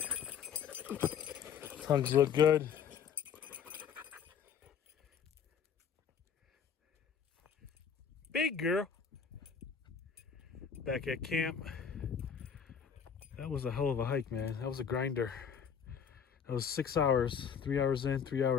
Tongues look good. Big girl. Back at camp. That was a hell of a hike, man. That was a grinder. That was 6 hours, 3 hours in, 3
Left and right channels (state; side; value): quieter; right; 7.3 dB